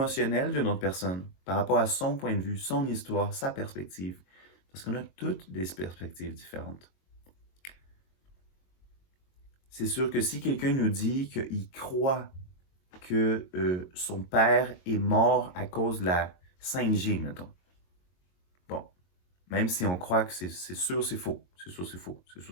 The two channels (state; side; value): late; right; 22 ms